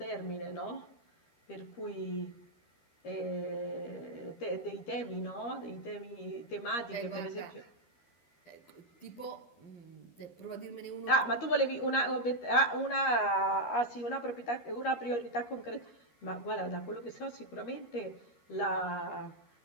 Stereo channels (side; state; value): right; late; 13 ms